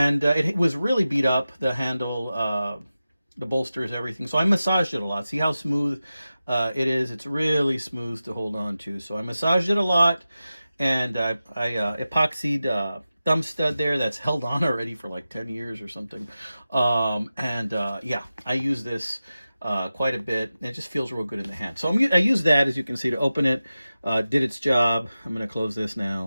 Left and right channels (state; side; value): inverted; both; correlation -0.94